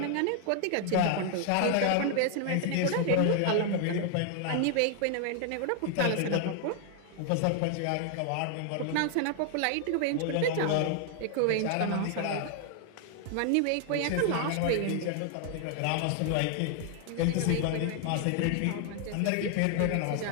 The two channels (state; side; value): different; both; correlation 0.00